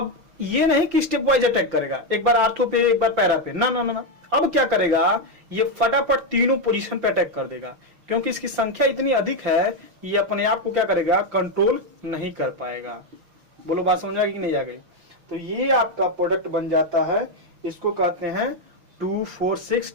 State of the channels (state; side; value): late; left; 5.7 ms